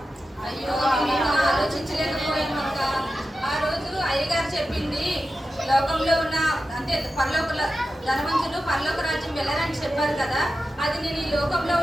అయ్యో మేము ఆలోచించలేకపోయామక్క. ఆ రోజు అయ్యగారు చెప్పింది లోక ధనవంతులు పరలోక రాజ్యం వెళ్ళరని చెప్పారు కదా, అది నేను ఈ లోకంలో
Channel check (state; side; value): normal; both; correlation 0.92